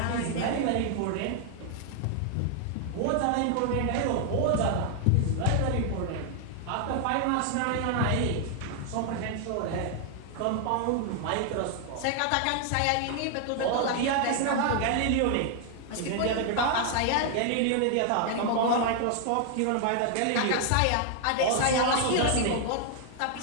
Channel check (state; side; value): different; both; correlation 0.00